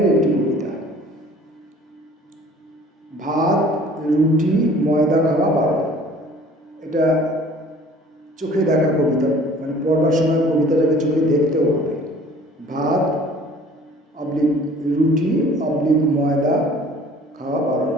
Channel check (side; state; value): both; normal; correlation 0.51